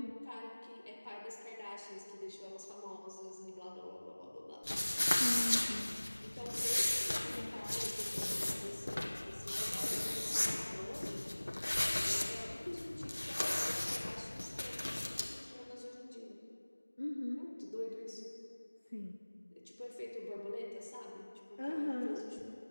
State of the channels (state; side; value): inverted; both; correlation -1.00